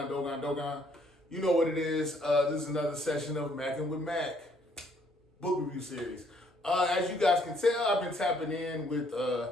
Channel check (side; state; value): both; normal; correlation 0.66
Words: You know what it is. This is another session of Mackin' with Mac book review series. As you guys can tell, I've been tapping in with